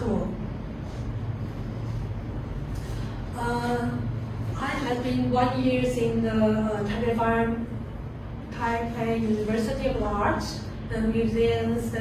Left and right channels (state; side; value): identical; both; correlation 1.00